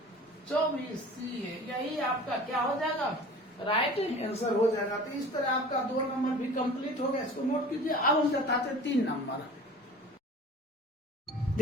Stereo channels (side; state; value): both; normal; correlation 0.42